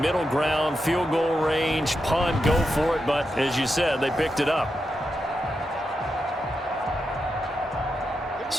middle ground, field goal range, punt, go for it. But as you said, they picked it up.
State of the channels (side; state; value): both; normal; correlation 0.87